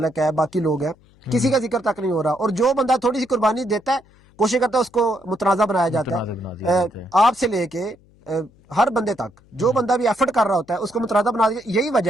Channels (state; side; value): noise; left; hum, 29 dB below the sound